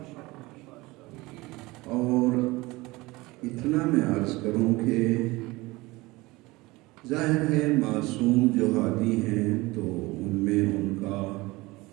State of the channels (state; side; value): quieter; left; 21.5 dB